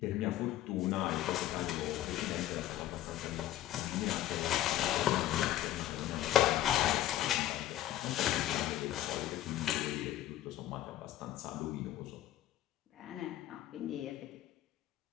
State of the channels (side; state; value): right; quieter; 13.5 dB